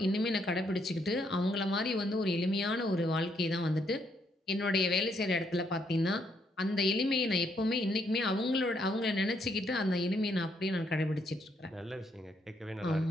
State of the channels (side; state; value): both; normal; correlation 0.73